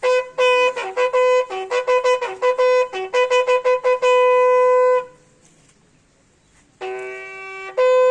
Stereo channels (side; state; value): both; identical; correlation 1.00